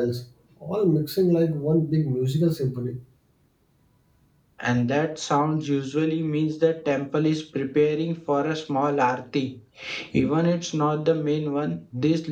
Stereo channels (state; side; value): identical; both; correlation 1.00